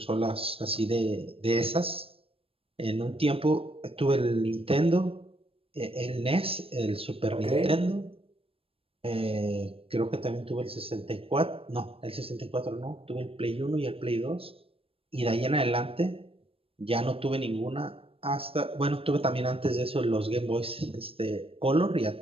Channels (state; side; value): late; left; 0.27 ms